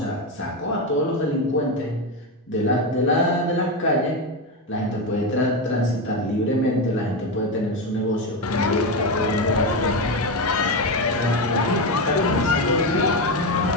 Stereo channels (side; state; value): both; normal; correlation 0.13